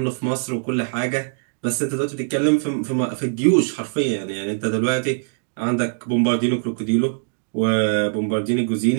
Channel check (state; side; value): silent; left; digital silence